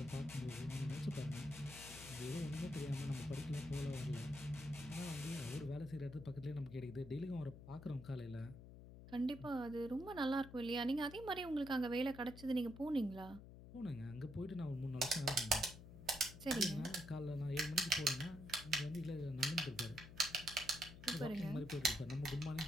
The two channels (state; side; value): noise; left; hum, 14 dB below the sound